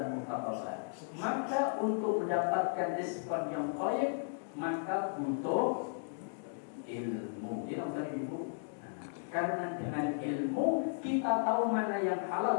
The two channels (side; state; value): right; silent; digital silence